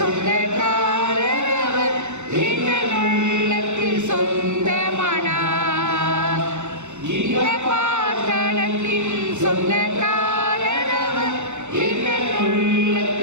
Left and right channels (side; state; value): left; late; 0.83 ms